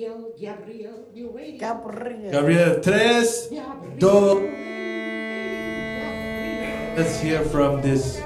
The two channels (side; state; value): both; identical; correlation 1.00